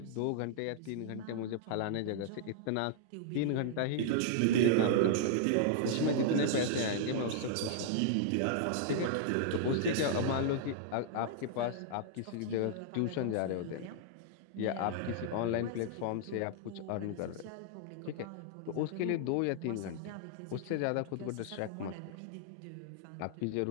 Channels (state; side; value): different; both; correlation -0.01